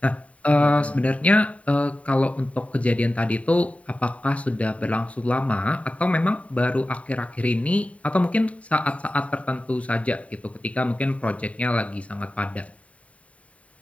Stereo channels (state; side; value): late; right; 0.066 ms